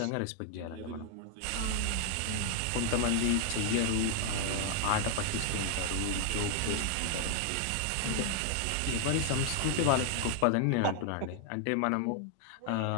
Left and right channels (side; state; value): both; different; correlation 0.00